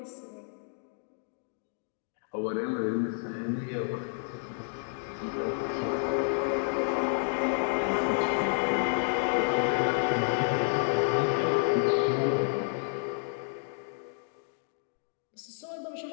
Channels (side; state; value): right; silent; digital silence